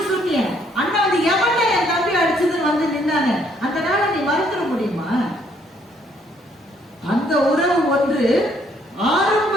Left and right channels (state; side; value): normal; both; correlation 0.67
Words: சொன்னிய, அண்ணா வந்து எவன்டா என் தம்பி அடிச்சதுன்னு வந்து நின்னாங்க, அந்த நாளை நீ மறந்துட முடியுமா? அந்த உறவு ஒன்று